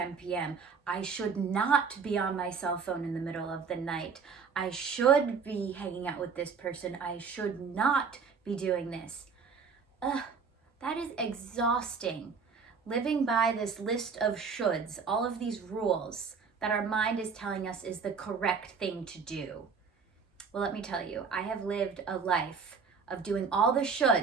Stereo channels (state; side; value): quieter; left; 5.6 dB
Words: p.m. I should not be on my cell phone in the middle of the night. I should be hanging out with this person. I should not be doing this. That is exhausting. Living by this list of shoulds, all of these rules that our mind is telling us is the correct thing to do. Well, let me tell you, I have lived a life of doing all the